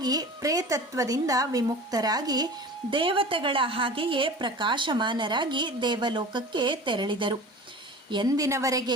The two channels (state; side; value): normal; both; correlation 0.37